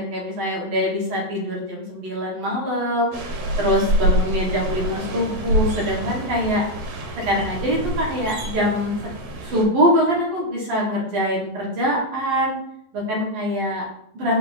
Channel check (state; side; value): late; left; 11 ms